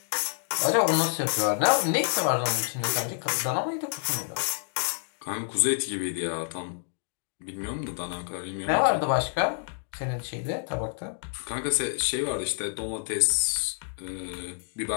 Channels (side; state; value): right; silent; digital silence